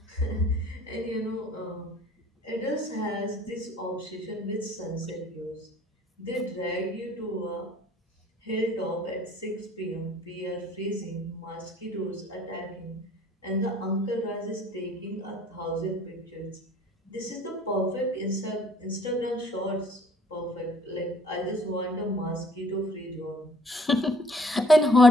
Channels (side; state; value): both; normal; correlation 0.56